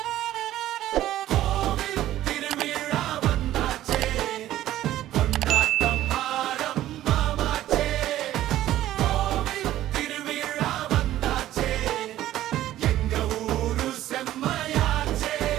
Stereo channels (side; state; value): left; quieter; 13.7 dB